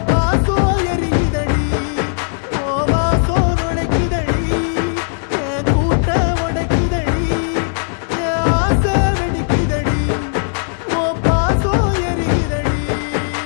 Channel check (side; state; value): right; silent; digital silence